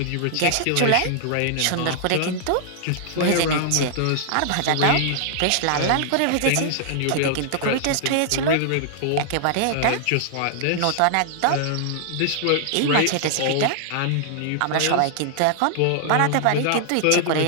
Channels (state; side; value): different; both; correlation -0.01